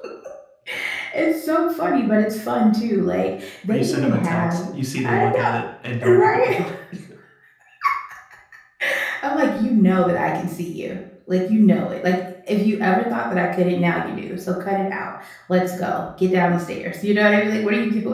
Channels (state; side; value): identical; both; correlation 1.00